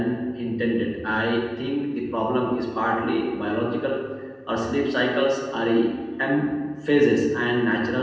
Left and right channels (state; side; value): identical; both; correlation 1.00